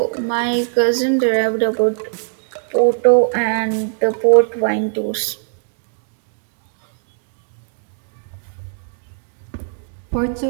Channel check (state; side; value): silent; left; digital silence